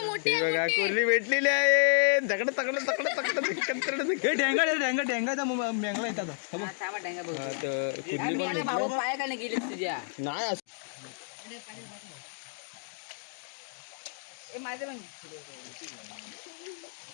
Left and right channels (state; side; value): silent; right; digital silence